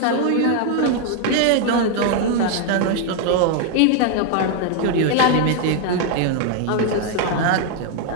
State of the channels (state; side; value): different; both; correlation 0.01